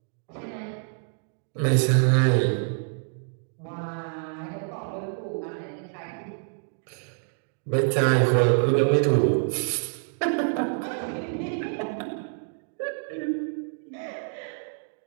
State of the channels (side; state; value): left; silent; digital silence